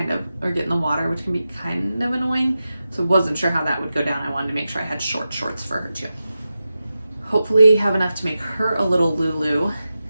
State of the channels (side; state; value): both; inverted; correlation -0.92